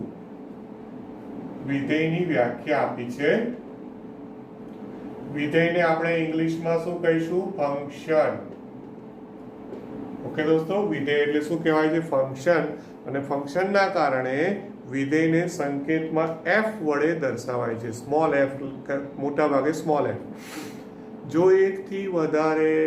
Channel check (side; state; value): both; identical; correlation 1.00